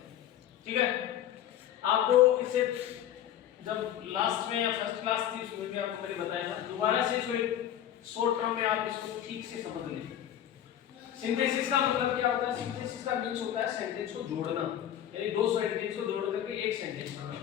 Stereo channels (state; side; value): quieter; right; 11.0 dB